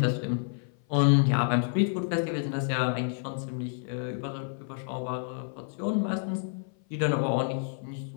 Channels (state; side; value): silent; right; 56 dB below the other